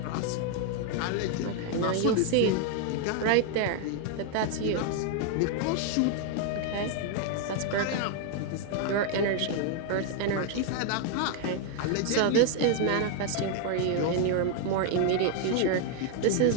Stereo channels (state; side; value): different; both; correlation 0.00